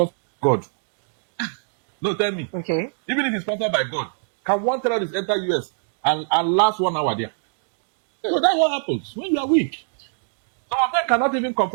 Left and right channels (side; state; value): left; silent; digital silence